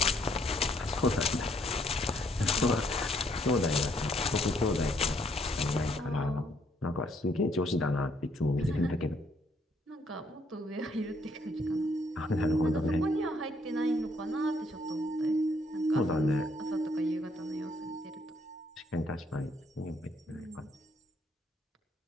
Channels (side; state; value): both; normal; correlation 0.69